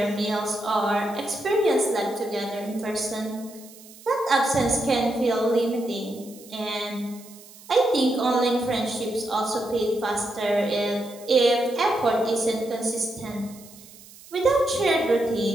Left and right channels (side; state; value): right; noise; hiss, 21 dB below the sound